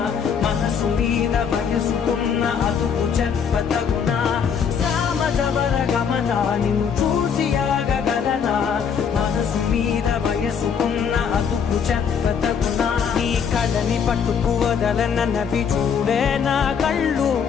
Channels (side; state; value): right; quieter; 6.9 dB